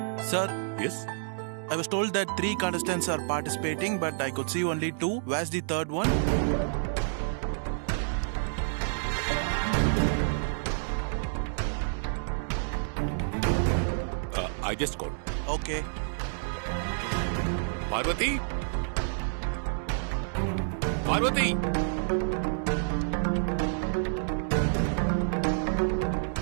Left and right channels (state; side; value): silent; left; digital silence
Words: Sir, Yes. I was told that 3 contestants are participating, but I could see only 2. Where's the third one? I just called. Okay. Parvathi, Parvathi.